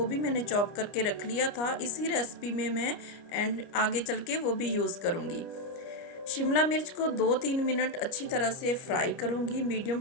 भी मैंने चॉप करके रख लिया था। इसी रेसिपी में मैं एंड आगे चल के वो भी यूज़ करूँगी। शिमला मिर्च को 2-3 मिनट अच्छी तरह से फ्राई करूंगी मीडियम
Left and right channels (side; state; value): right; late; 29 ms